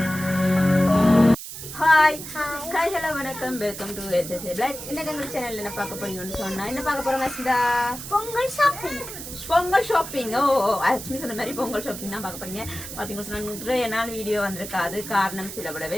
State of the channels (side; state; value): right; noise; hiss, 10 dB below the sound